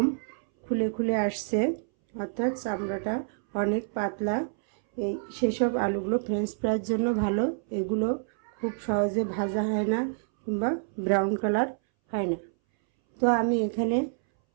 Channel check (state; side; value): silent; left; 60 dB below the other